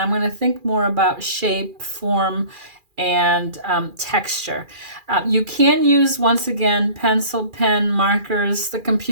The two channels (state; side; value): late; left; 2.4 ms